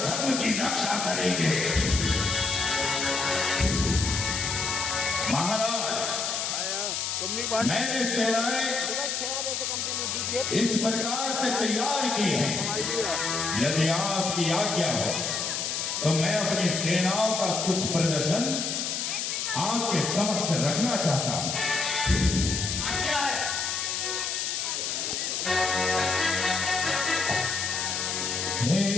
धर्म की रक्षा करेंगे। महाराज मैंने सेनाएं इस प्रकार से तैयार की है, यदि आपकी आज्ञा हो तो मैं अपनी सेनाओं का कुछ प्रदर्शन आपके समक्ष रखना चाहता हूं। हे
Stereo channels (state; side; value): noise; left; hiss, 1 dB below the sound